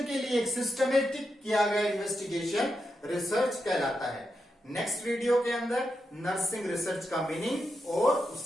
के लिए एक सिस्टमेटिक किया गया इन्वेस्टिगेशन रिसर्च कहलाता है। नेक्स्ट वीडियो के अंदर नर्सिंग रिसर्च का मीनिंग और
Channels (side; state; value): both; normal; correlation 0.86